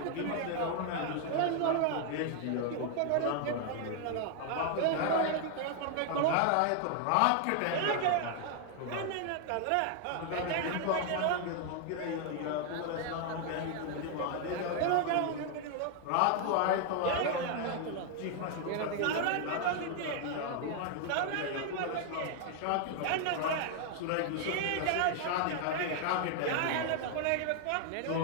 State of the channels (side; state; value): both; different; correlation 0.00